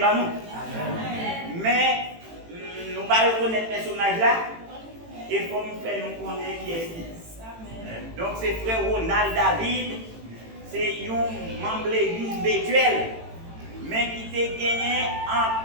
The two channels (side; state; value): left; late; 18 ms